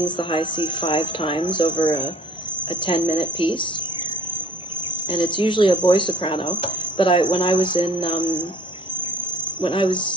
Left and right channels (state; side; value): normal; both; correlation 0.53